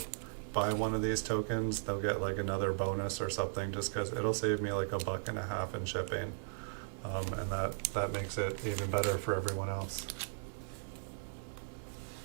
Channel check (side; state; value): left; silent; digital silence